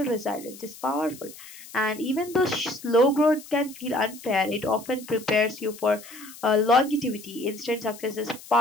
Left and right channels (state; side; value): noise; left; hiss, 17 dB below the sound